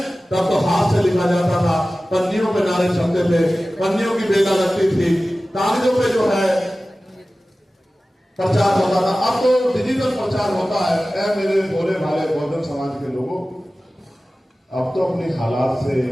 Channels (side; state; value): both; normal; correlation 0.96